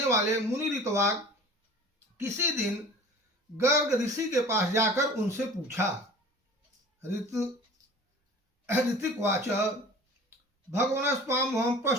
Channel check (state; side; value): normal; both; correlation 0.43